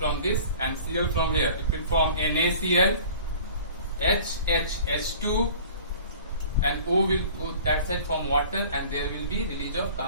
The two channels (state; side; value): inverted; both; correlation -0.45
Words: this and Cl from here. It will form NaCl, H2, and O will go that side from water, and there will be release of